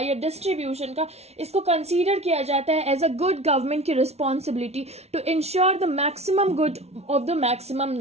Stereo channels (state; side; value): late; left; 0.31 ms